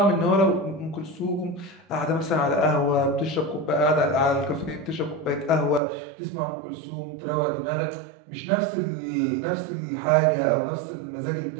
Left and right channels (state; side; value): drops out; left; at 5.8 s